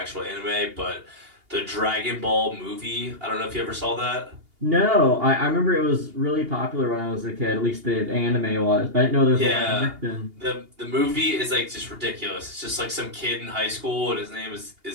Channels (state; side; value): late; left; 2.8 ms